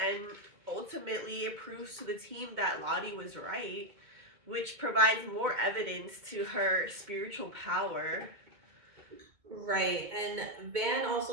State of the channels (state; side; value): late; left; 2.2 ms